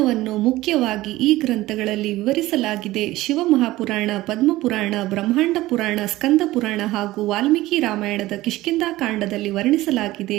ಮುಖ್ಯವಾಗಿ ಈ ಗ್ರಂಥಗಳಲ್ಲಿ ವಿವರಿಸಲಾಗಿದೆ. ಶಿವಮಹಾಪುರಾಣ, ಪದ್ಮಪುರಾಣ, ಬ್ರಹ್ಮಾಂಡ ಪುರಾಣ, ಸ್ಕಂದ ಪುರಾಣ ಹಾಗೂ ವಾಲ್ಮೀಕಿ ರಾಮಾಯಣದ ಕಿಷ್ಕಿಂಧಾಕಾಂಡದಲ್ಲಿ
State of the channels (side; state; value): left; quieter; 17.4 dB